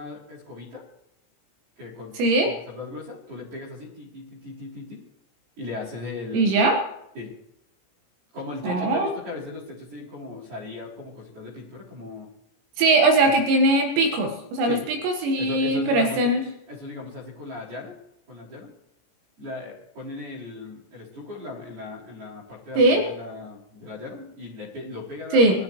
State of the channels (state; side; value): late; left; 17 ms